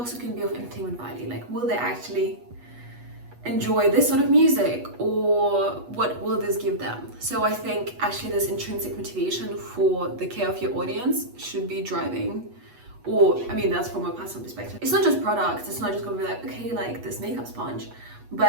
can be of entertainment value. Like, will they actually enjoy this sort of music, or what will this give them? So I think actually this intrinsic motivation for the care of your audience should be driving, or I mean, that's from a personal perspective. It's not just products, it's not just gonna be like, okay, like this makeup sponge,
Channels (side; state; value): left; late; 8.2 ms